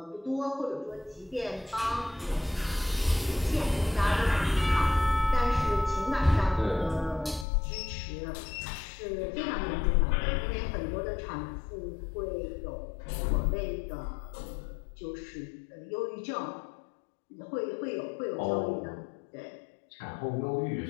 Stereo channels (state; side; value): drops out; right; at 7.5 s